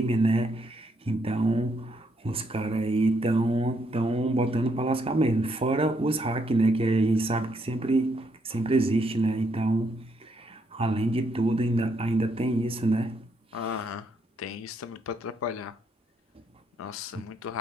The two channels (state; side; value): normal; both; correlation 0.75